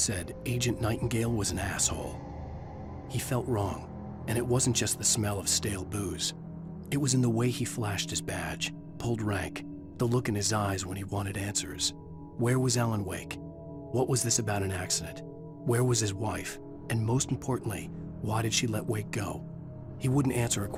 Agent Nightingale was an asshole. He felt wrong, and it wasn't just the smell of stale booze. It was in the way he flashed his badge, pulled rank, the look in his eyes when he wanted answers. Where was Alan Wake? What was this about an accident? Where was his wife? And most importantly, why did she let Wake go? He wouldn't answer her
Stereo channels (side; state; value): both; identical; correlation 1.00